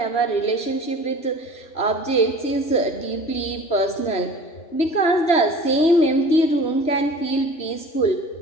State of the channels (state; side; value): late; right; 3.0 ms